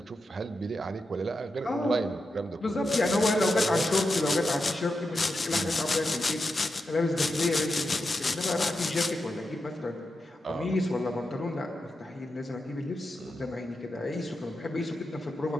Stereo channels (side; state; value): both; normal; correlation 0.88